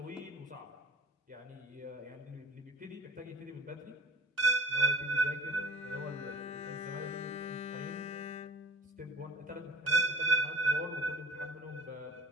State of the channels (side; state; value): both; normal; correlation 0.43